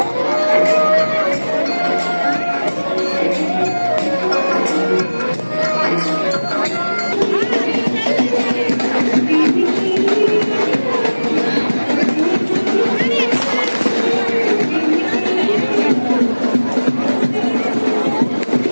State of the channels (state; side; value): inverted; both; correlation -1.00